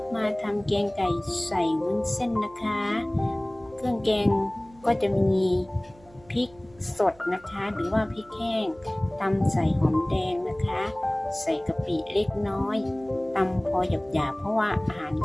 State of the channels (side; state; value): right; noise; hum, 26 dB below the sound